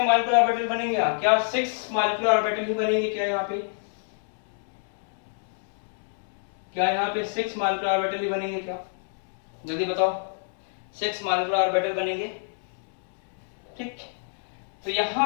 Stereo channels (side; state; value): right; silent; digital silence